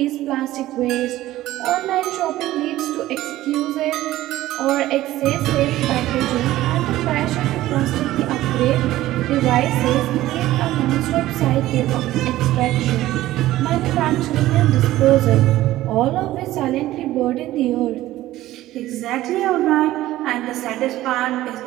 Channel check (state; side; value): quieter; left; 15.4 dB